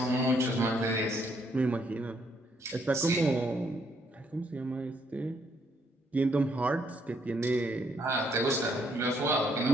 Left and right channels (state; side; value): normal; both; correlation 0.71